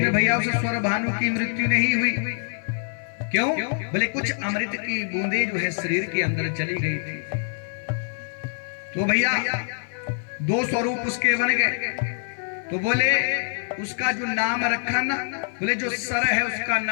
भैया उस स्वर भानु की मृत्यु नहीं हुई। क्यों? बोले कुछ अमृत की बूंदे जो है शरीर के अंदर चली गई थी। तो भैया दो स्वरूप उसके बन गए। तो बोले उसका जो नाम रखा ना, बोले जो सर है उसका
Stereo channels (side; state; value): right; silent; 57 dB below the other